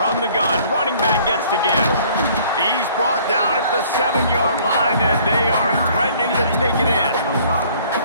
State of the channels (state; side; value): inverted; both; correlation -0.56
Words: the gun, running back gets to give. He's brought down at the 7-yard line, and they are threatening to take it